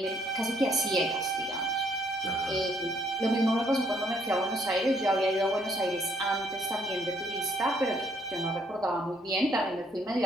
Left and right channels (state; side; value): normal; both; correlation 0.68